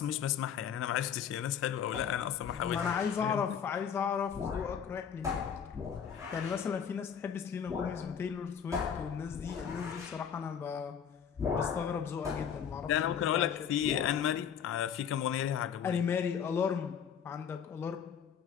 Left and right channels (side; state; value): right; quieter; 7.9 dB